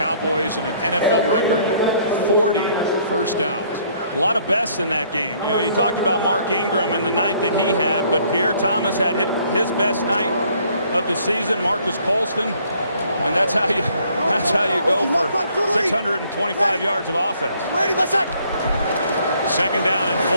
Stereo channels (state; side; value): inverted; both; correlation -0.63